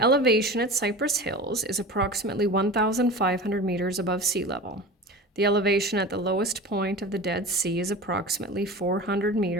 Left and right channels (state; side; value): normal; both; correlation 0.33